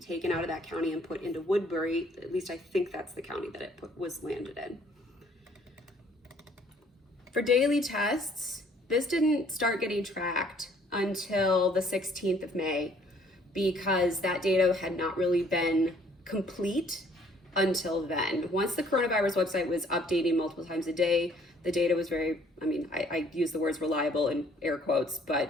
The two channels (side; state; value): both; normal; correlation 0.61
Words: out of that county and put into Woodbury. At least I think that's the county that it was landed in. For daily tests, this didn't start getting tracked until the 16th of May, because that data had not really been complete until then. Once the coronavirus website was updating multiple times a day, the data was very, I use the words reliable in air quotes,